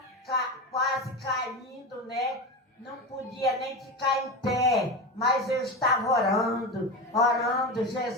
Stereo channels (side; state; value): both; normal; correlation 0.21